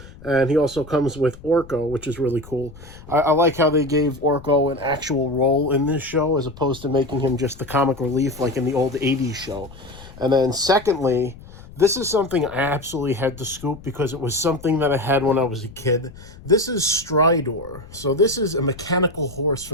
And he also comes with Orko, which is really cool. I like how they gave Orko an actual role in this show as opposed to making him just the comic relief like in the old 80s show. And then secondly, this is something I absolutely had to scoop because it was something that I had when I was a kid. This is Stridor. So this is a mechanical horse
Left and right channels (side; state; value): left; noise; rumble, 19 dB below the sound